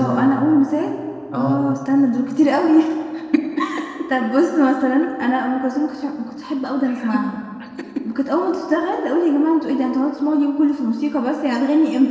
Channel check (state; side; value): identical; both; correlation 1.00